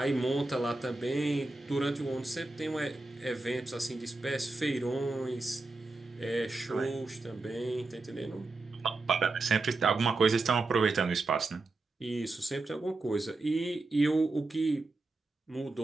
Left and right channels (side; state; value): left; quieter; 3.3 dB